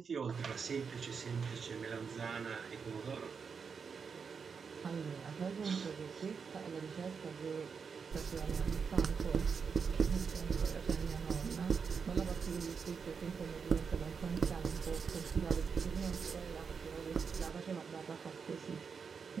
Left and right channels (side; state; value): left; quieter; 5.9 dB